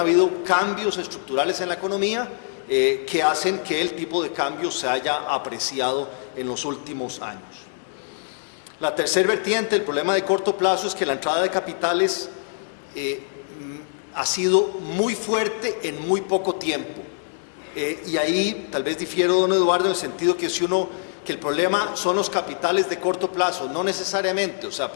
cambios estructurales en la economía que hacen que el tipo de cambio se haya apreciado en los últimos años. La tercera vertiente, el problema de corto plazo, es que la entrada de capitales ha sido muy fuerte en muy poco tiempo. Y ahí tal vez difiero, don Eduardo, en el sentido que que el problema son los capitales de corto plazo, no necesariamente, o sea,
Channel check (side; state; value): right; silent; digital silence